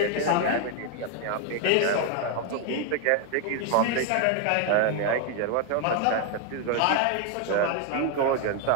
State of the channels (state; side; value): different; both; correlation 0.01